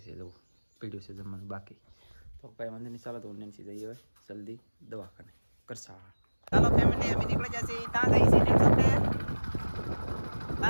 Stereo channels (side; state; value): both; inverted; correlation -1.00